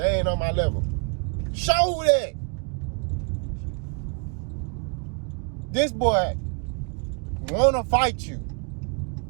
ain't on my level. Show that. This boy wanna fight you.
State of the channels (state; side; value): quieter; left; 38.5 dB